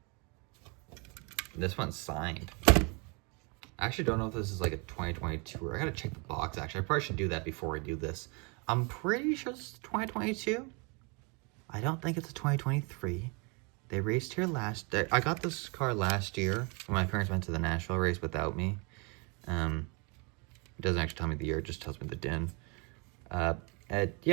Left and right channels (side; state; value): left; quieter; 31.9 dB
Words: This one's signed. I actually don't know if this is like a 2022 or I gotta check the box actually. I probably should do that before I do this. I'm pretty sure this is 2022. I don't think it's a 2023. They raced here last day. I got this car last year when my parents went to the Nashville race without me. It doesn't actually tell me the year, it just tells me the din.